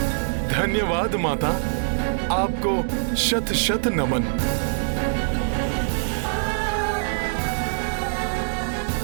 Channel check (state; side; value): silent; left; digital silence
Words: धन्यवाद माता, आपको शत शत नमन।